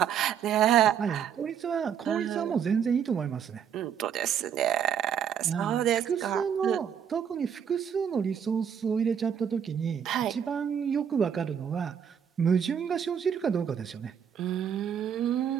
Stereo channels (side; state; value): left; quieter; 8.2 dB